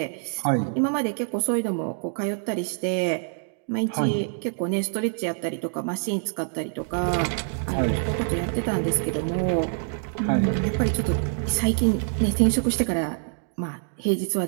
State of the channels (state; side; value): silent; left; 61 dB below the other